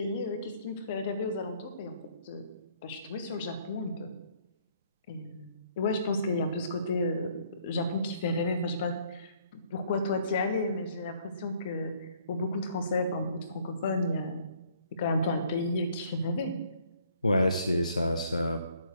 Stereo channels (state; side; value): inverted; both; correlation -0.63